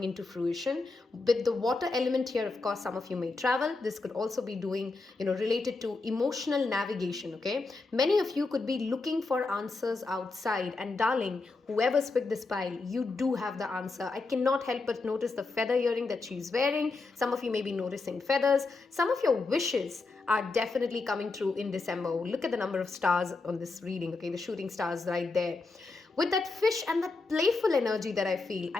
into fruition. With the water element here, of course, some of you may travel. This could also be doing, related to emotional navigation, okay? Many of you could be looking for answers outside. And darling, whoever's picked this pile, you do have the answer. I cannot help but notice the feather earring that she's wearing. Some of you may be noticing feathers. Some of your wishes are definitely coming true in December. Look at the number of stars on this reading, okay? The shooting stars right there. With that fish and that playful energy that I feel,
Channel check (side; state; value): right; quieter; 3.7 dB